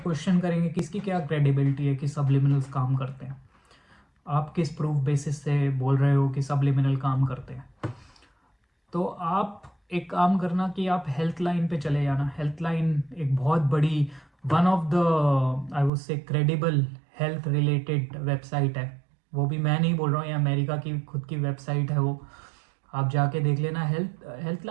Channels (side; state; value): left; drops out; at 15.9 s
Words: करेंगे कि इसकी क्या क्रेडिबिलिटी है कि सबलिमिनल्स काम करते हैं, आप किस प्रूफ बेसिस से बोल रहे हो कि सबलिमिनल काम करते हैं। तो आप एक काम करना कि आप हेल्थ लाइन पे चले जाना। हेल्थ लाइन एक बहुत बड़ी, one of the I would say credible health related website है। वो भी मैं नहीं बोल रहा हूँ, ये अमेरिका की खुद की वेबसाइट है वो, आप जाके देख लेना। हेल्थ